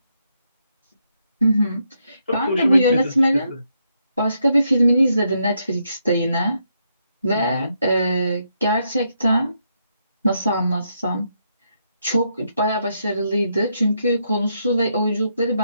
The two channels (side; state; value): both; inverted; correlation -0.78